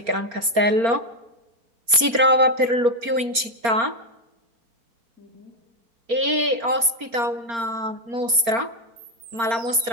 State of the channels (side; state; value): left; late; 4.3 ms